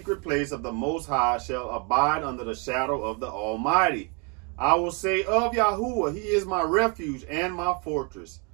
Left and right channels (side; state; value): left; quieter; 34.2 dB